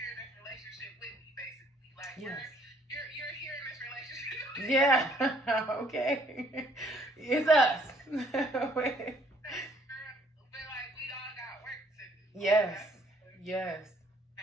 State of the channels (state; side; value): normal; both; correlation 0.63